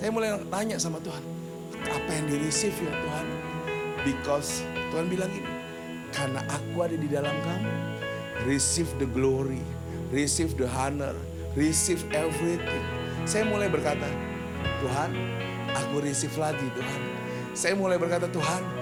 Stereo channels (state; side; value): identical; both; correlation 1.00